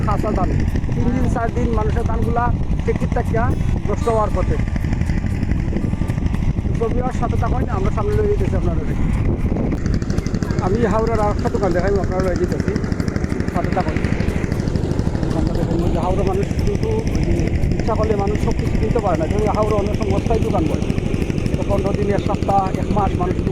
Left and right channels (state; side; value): identical; both; correlation 1.00